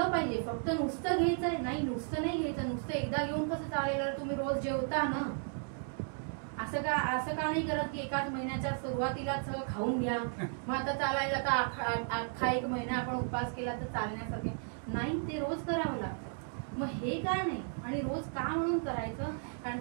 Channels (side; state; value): left; silent; 55 dB below the other